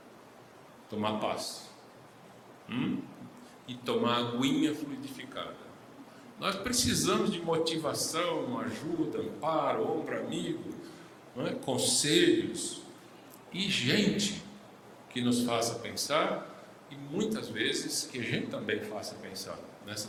tomar paz e tomar aguinha fluidificada. Nós precisamos de motivação, ajuda, amparo, ombro amigo, conselhos e gente que nos faça pensar, e muitas vezes que a gente também faça pensar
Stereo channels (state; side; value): identical; both; correlation 1.00